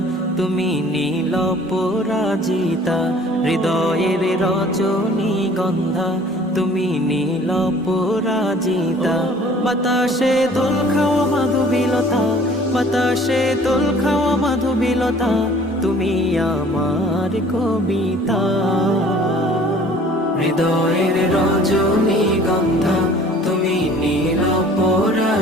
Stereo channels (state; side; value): normal; both; correlation 0.52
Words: তুমি নীল পরাজিতা, হৃদয়ের রজনীগন্ধা তুমি নীল পরাজিতা। বাতাসে দোল খাওয়া মাধুবিলতা, বাতাসে দোল খাওয়া মাধুবিলতা, তুমি আমার কবিতা। হৃদয়ের রজনীগন্ধা তুমি নীল